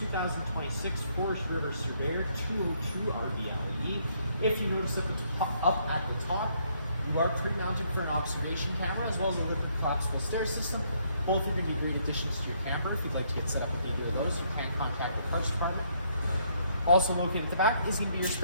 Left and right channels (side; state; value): both; inverted; correlation -0.70